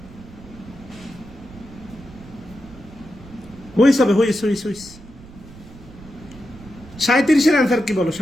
হুইস হবে, হুইস। 37-এর অ্যান্সার কি বলো?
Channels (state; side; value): noise; right; rumble, 19 dB below the sound